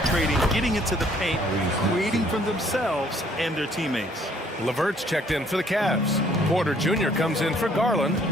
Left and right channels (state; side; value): normal; both; correlation 0.62